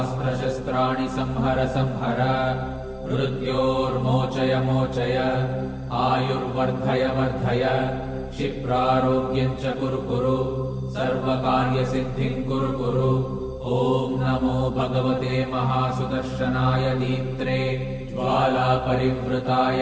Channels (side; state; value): both; identical; correlation 1.00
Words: शस्त्राणि संहर संहर मृत्योर्मोचय मोचय आयुर्वर्धय वर्धय क्षिप्रारोग्यं च कुरु कुरु सर्वकार्यसिद्धिं कुरु कुरु ॐ नमो भगवते महासुदर्शनाय दीप्त्रे ज्वालापरिवृताय